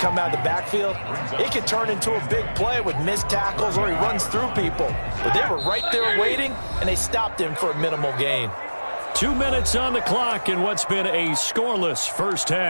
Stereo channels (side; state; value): both; inverted; correlation -1.00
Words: out of the backfield, it can turn into a big play with missed tackles or he runs through people. But they were right there waiting, and they stopped him for a minimal gain. 2 minutes on the clock in what's been a scoreless first